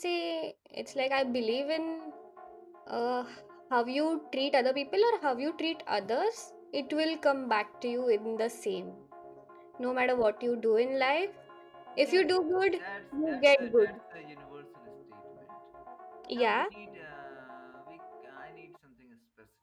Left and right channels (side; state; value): both; identical; correlation 1.00